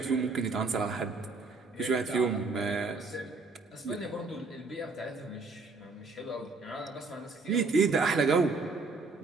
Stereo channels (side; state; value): left; quieter; 3.9 dB